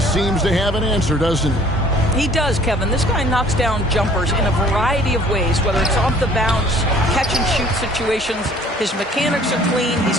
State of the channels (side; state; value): both; normal; correlation 0.54